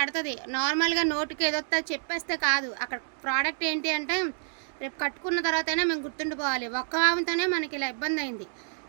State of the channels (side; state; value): left; silent; digital silence